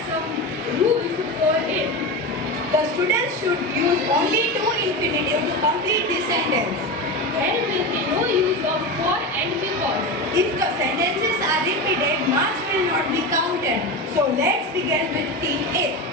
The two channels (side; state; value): both; normal; correlation 0.21